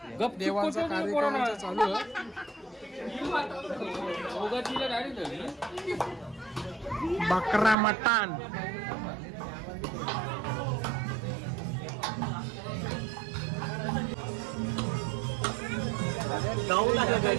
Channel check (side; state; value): left; drops out; at 7.8 s